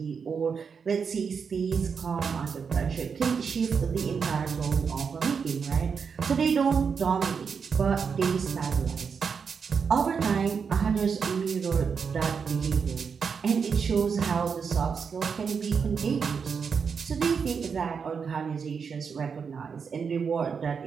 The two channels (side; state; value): left; quieter; 6.1 dB